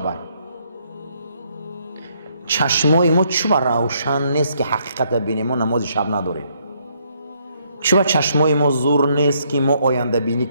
است. چشمای ما چوب روشن نیست که حقیقت ببینیم، ما نماز شب نداریم. چوب چشمای ما زور نیست که ما آینده بینی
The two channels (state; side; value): inverted; both; correlation -0.71